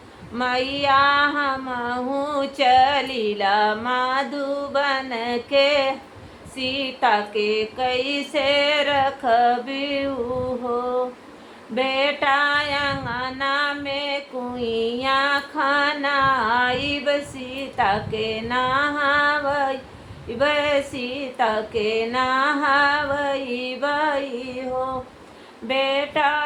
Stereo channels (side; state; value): both; identical; correlation 1.00